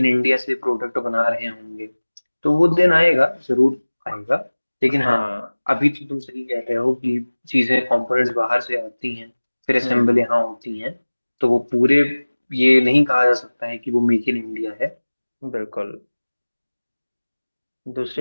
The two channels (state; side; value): inverted; both; correlation -1.00